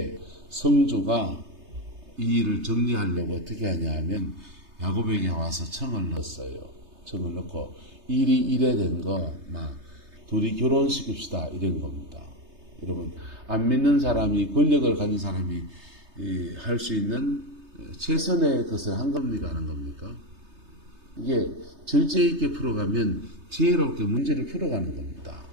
성주가 이 일을 정리하려고 어떻게 하냐 하면 야곱에게 와서 청을 넣었어요. 청을 넣고 일이 이래 된 거 막 둘이 결혼시킵시다 이런 겁니다. 여러분 안 믿는 사람이 권력을 가진 사람이 할 수 있는 최선의 것을 한 겁니까 하는 겁니까? 이게 절제 있게 풀어가면 지혜롭게 문제를 풀어가는 겁니다.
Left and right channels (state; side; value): late; left; 3.3 ms